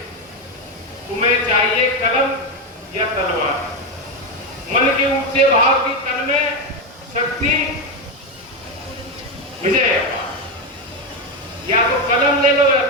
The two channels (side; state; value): both; normal; correlation 0.10